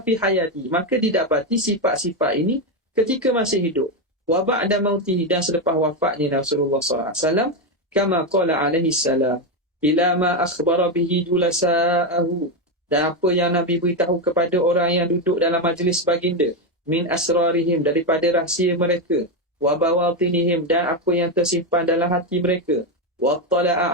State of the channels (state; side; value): normal; both; correlation 0.08